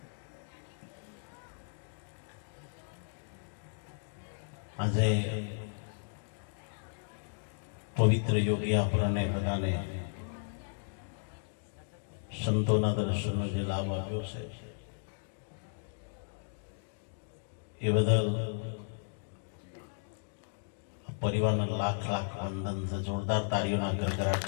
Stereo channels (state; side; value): silent; right; digital silence